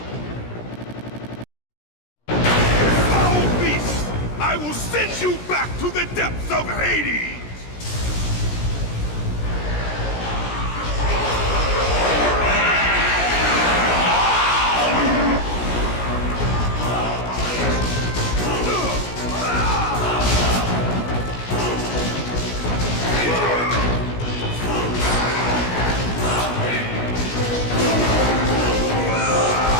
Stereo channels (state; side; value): late; right; 17 ms